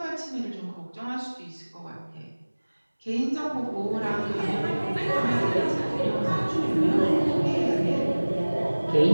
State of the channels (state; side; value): inverted; both; correlation -1.00